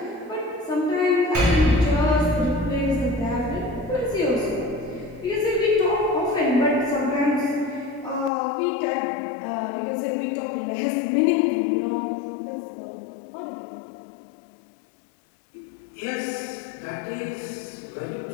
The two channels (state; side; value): drops out; right; at 8.3 s